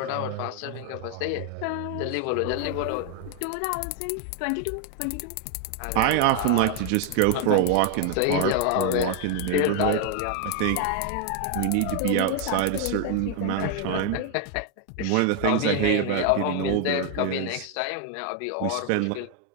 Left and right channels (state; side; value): different; both; correlation 0.01